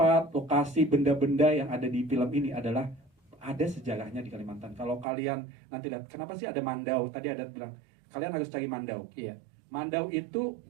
lokasi, benda-benda yang ada di film ini adalah ada sejarahnya di Kalimantan. Kalau kalian nanti lihat, kenapa sih ada Mandau? Tadi ada bilang, kalian harus cari Mandau. Iya. Mandau itu,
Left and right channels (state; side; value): drops out; left; at 5.1 s